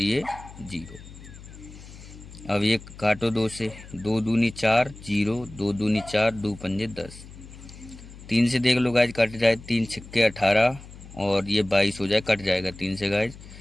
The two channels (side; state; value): left; noise; hum, 17 dB below the sound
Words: 0। अब ये काटो 2 से, 2 दूनी 4, 0, 2 दूनी 4, 2 पंजे 10। 3 से देख लो गाइज, कट जाए, 3 छक्के 18 और ये 22 हो जाए, कट जाएगा 3 से गाइज।